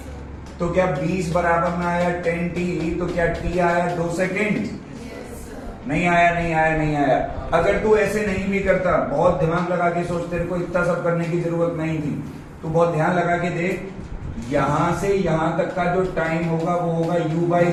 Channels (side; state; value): both; identical; correlation 1.00